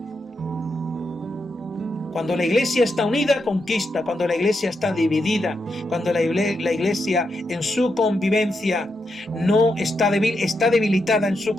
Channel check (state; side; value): normal; both; correlation 0.84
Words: Cuando la iglesia está unida, conquista. Cuando la iglesia está dividida, cuando la iglesia en su convivencia no está débil, está debilitada en su